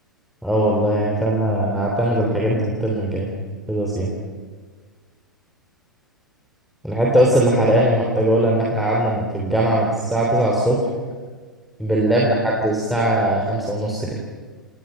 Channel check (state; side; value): normal; both; correlation 0.32